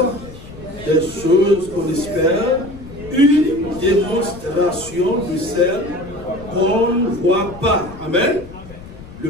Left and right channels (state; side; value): noise; left; rumble, 16 dB below the sound